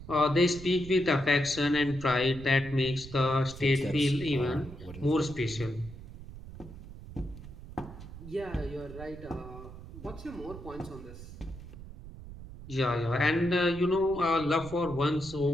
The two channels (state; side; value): noise; right; rumble, 14 dB below the sound